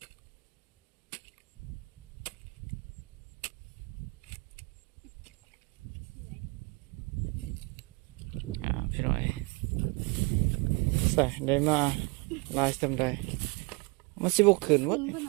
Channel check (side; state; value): left; quieter; 28.1 dB